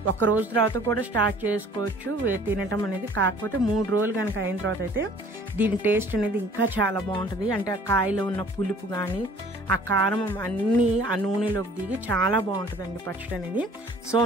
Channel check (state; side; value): normal; both; correlation 0.52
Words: ఒక రోజు తర్వాత కూడా స్టార్ట్ చేసుకోవచ్చు తినటం అనేది. కాకపోతే 3 రోజులు కనుక అయిన తర్వాత అయితే దీని టేస్ట్ అనేది ఇంకా చాలా బాగుంటుంది. అంటే ఆ కాయలో ఉన్న పులుపు కానీ ఆ కారం అన్నీ ఆ నూనెలోకి దిగి చాలా బాగుంటుందండి పచ్చడి అనేది. సో